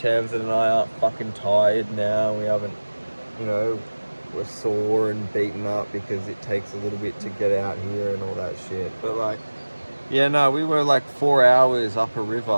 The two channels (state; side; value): inverted; both; correlation -1.00